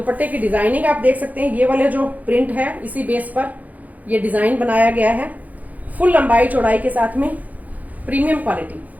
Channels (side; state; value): left; late; 0.078 ms